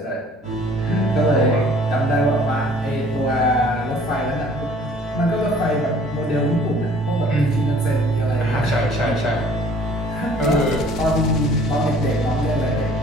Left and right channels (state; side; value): normal; both; correlation 0.54